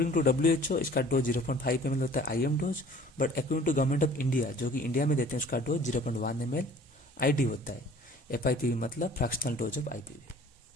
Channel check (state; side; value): normal; both; correlation 0.50